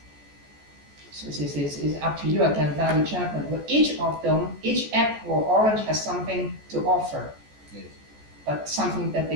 So this is up to you again, value judgment. But each of them, each apple or orange has something to offer. Yes. but something that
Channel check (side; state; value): left; late; 14 ms